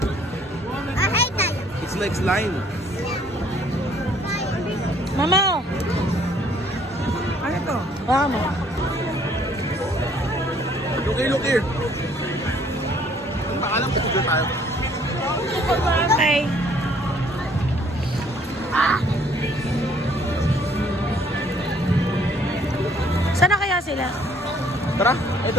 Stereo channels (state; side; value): normal; both; correlation 0.61